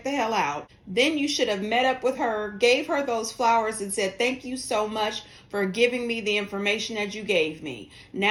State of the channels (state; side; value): identical; both; correlation 1.00